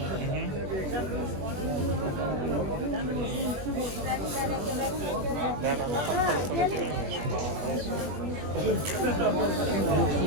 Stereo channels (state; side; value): late; left; 21 ms